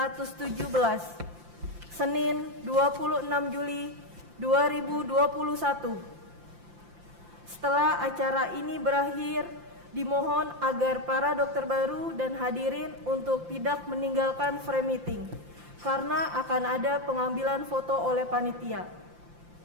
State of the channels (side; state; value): left; late; 5.8 ms